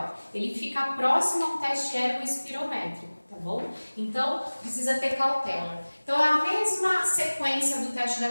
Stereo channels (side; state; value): both; inverted; correlation -1.00